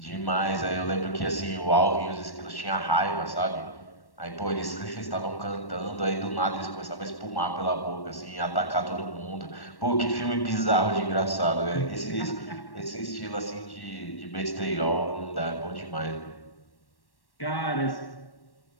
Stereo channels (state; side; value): late; right; 1.1 ms